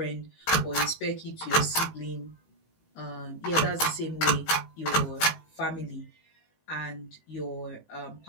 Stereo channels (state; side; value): late; right; 19 ms